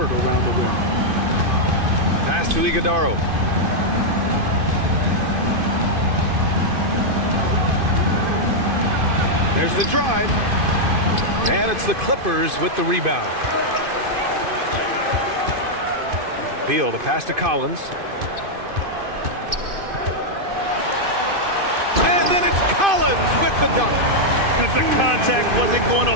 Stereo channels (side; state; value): left; late; 2.5 ms